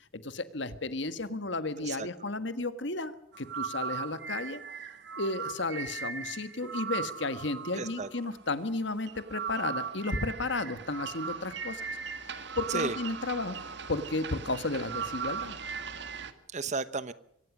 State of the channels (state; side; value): normal; both; correlation 0.07